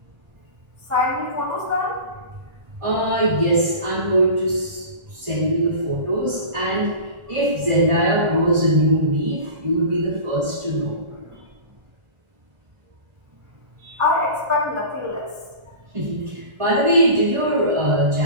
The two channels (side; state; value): left; late; 1.3 ms